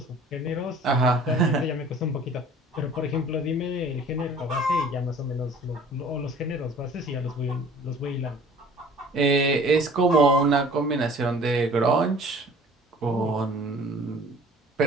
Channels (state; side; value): normal; both; correlation 0.49